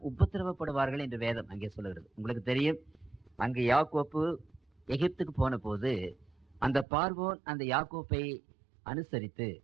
உபத்திரவப்படுவார்கள் என்று வேதம் அங்கே சொல்லுகிறது. உங்களுக்கு தெரியும், அங்கே யாக்கோப்பு எகிப்துக்கு போன போது அந்த பார்வோன் அந்த யாக்கோப்பை அனுசரித்து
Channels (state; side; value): drops out; left; at 6.9 s